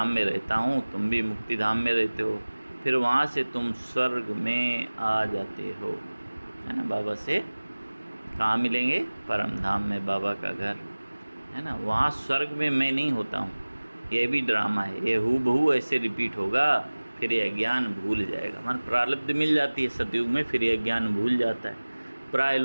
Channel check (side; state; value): both; inverted; correlation -1.00